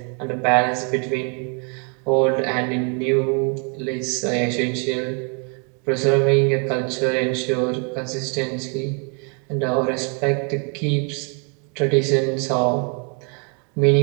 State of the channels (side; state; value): left; quieter; 38.4 dB